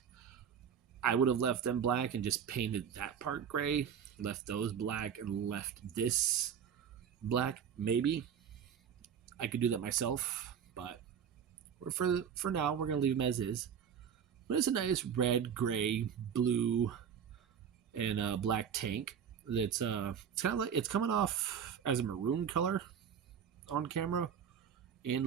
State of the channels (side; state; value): left; quieter; 7.8 dB